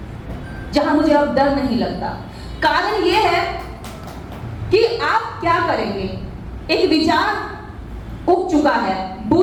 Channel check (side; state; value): both; identical; correlation 1.00